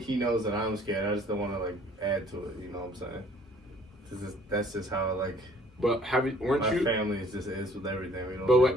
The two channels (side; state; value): both; normal; correlation 0.57